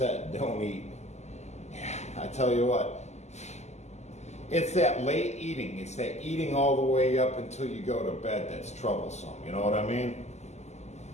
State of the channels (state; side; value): late; right; 0.33 ms